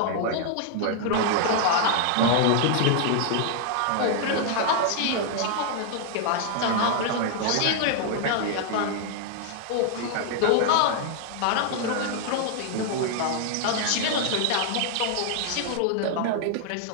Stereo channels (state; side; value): different; both; correlation 0.00